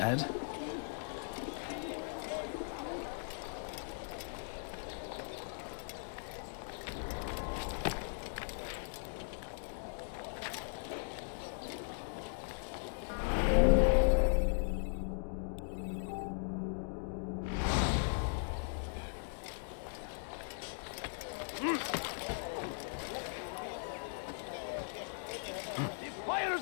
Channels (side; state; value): right; silent; digital silence